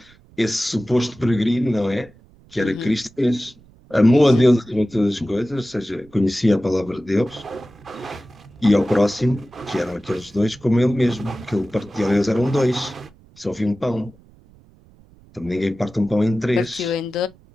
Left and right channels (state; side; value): noise; right; rumble, 27 dB below the sound